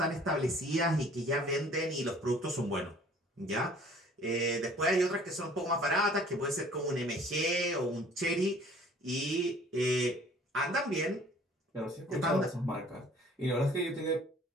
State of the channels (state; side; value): normal; both; correlation 0.53